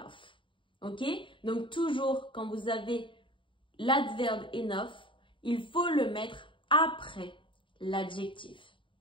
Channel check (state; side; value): late; right; 0.24 ms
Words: Ok? Donc, toujours, quand vous avez l'adverbe enough, il faut le mettre après l'adjectif.